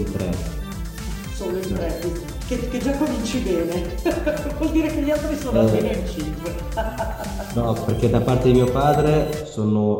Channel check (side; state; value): both; identical; correlation 1.00